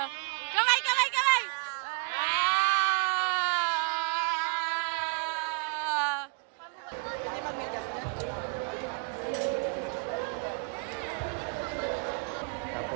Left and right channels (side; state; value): left; quieter; 37.8 dB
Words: Kamay, kamay, kamay!